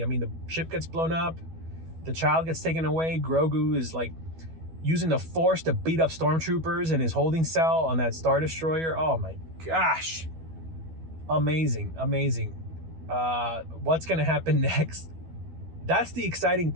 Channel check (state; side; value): late; left; 12 ms